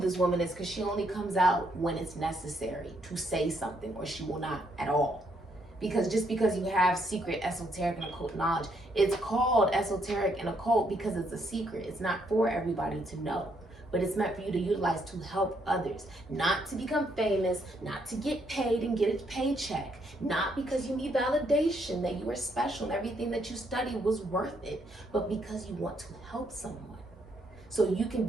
woman is because she only comes out when it's necessary to say something, or she will not at all. Because just because you have secret esoteric and occult knowledge, it's called esoteric and occult because it's a secret. It's not for everybody to know, but it's meant for you to utilize to help others, not to become famous, not to get paid and get a paycheck, not because you need validation that you are special and everything that you studied was worth it, but because you want to help someone. so you can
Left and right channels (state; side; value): normal; both; correlation 0.73